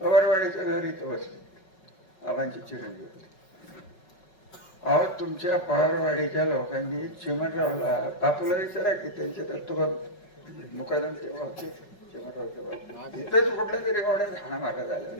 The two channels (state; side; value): late; right; 5.4 ms